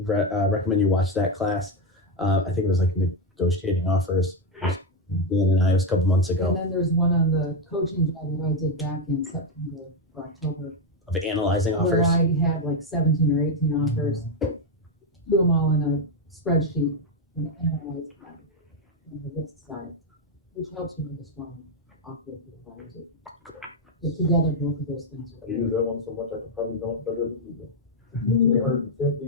recommend you watch that class. I think it was like negotiating offers. Dan and I, it was a couple months And ago, then there's one on the coaching job that I did back in September or October, of analyzing where offers. I had like 17 or 18 offers, threw them all in a spreadsheet and analyzed them on the list side, which helps you make a strong offer for the buyers. But together, both of those things I are. use that one so much I could probably don't better than you do. 350,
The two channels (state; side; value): normal; both; correlation 0.06